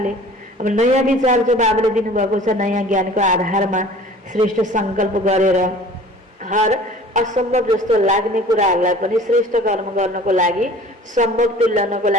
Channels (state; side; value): normal; both; correlation 0.46